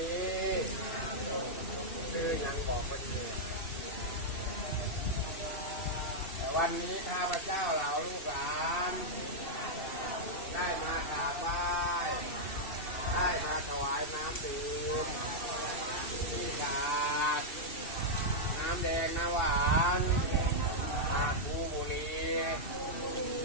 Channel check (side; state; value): right; late; 2.7 ms